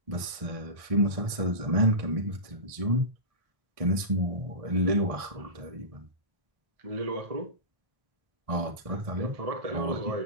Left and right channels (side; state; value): left; late; 1.6 ms